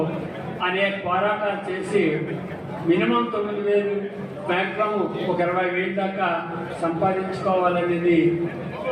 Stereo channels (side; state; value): both; identical; correlation 1.00